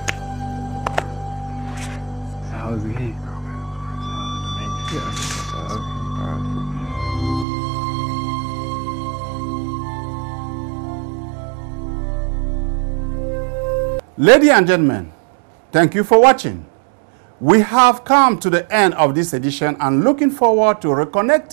Ladies and gentlemen, thank you for watching. We have come to the end of this edition and looking forward to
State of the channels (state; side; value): drops out; left; at 7.5 s